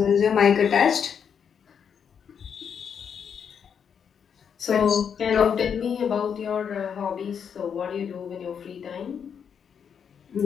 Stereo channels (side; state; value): right; quieter; 7.4 dB